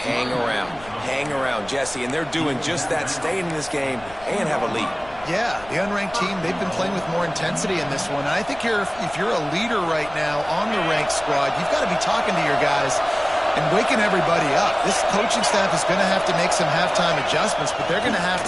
hang around, Jesse, and they're doing just that, staying in this game and have a lead. Yeah, the unranked team, they've been playing with more intensity in this one. And I think if you're a leader right now on the ranked squad, you've got to be talking to your guys and waking everybody up. This coaching staff is going to have to make some halftime adjustments, but they're going to have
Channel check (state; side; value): noise; left; rumble, 22 dB below the sound